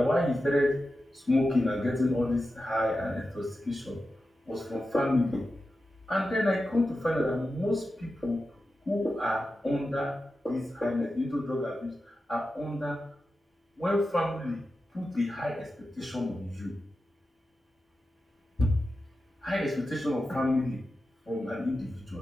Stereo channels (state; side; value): normal; both; correlation 0.91